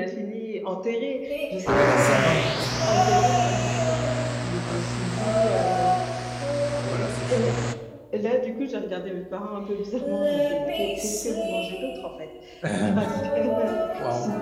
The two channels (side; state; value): both; identical; correlation 1.00